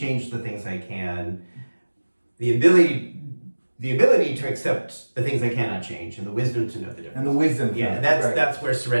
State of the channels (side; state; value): both; inverted; correlation -1.00